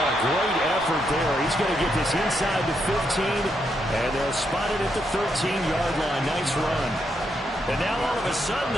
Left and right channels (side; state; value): both; normal; correlation 0.79